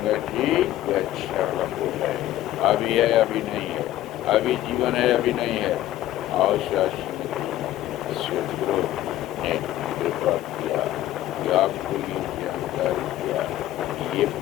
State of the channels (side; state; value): right; quieter; 13.7 dB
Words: जी वह क्षणभंगुर है। अभी है अभी नहीं है, अभी जीवन है अभी नहीं है। और सदगुरु ने कृपा किया कि आपको ये जानकारी किया कि ये